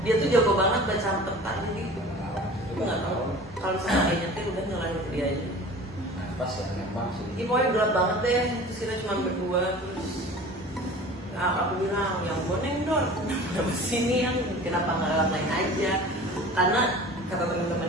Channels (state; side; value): normal; both; correlation 0.41